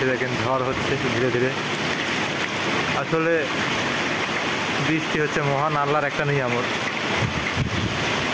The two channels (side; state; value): both; identical; correlation 1.00